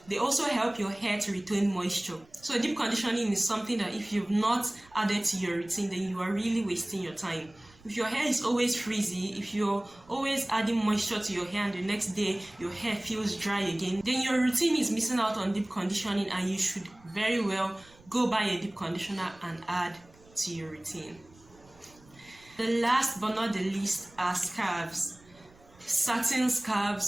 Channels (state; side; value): noise; right; rumble, 27 dB below the sound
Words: They also help your hair to retain moisture. So deep conditioning is something that if you've not added to your routine, then you are really wasting your time. If your hair is always frizzy, if you're always adding moisture to your hair and the next day your hair feels dry again, then your routine is missing out on deep conditioning, and you should very well go buy a deep conditioner and add to your routine. The last but not the least are scarves. Satin